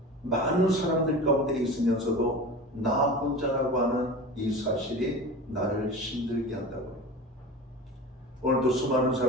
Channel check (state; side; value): normal; both; correlation 0.33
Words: 많은 사람들 가운데 있으면서도 나 혼자라고 하는 이 사실이 나를 힘들게 한다고요. 오늘도 수많은